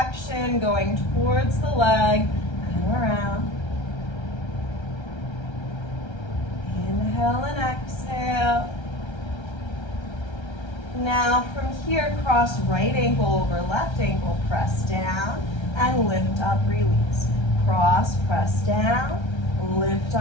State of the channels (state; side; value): late; right; 1.3 ms